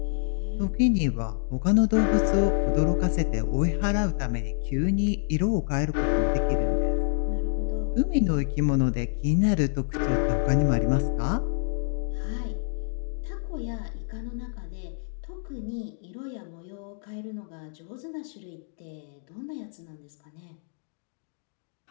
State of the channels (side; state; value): right; silent; digital silence